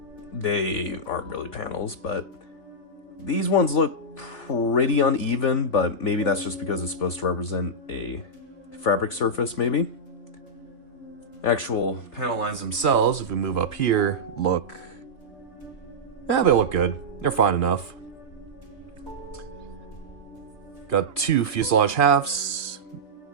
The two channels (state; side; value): late; right; 3.5 ms